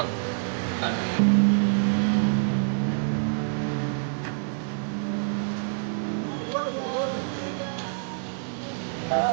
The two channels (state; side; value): silent; left; 60 dB below the other